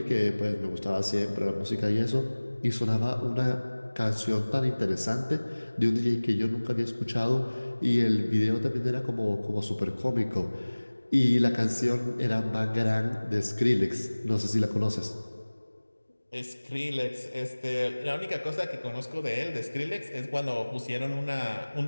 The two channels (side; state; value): both; inverted; correlation -1.00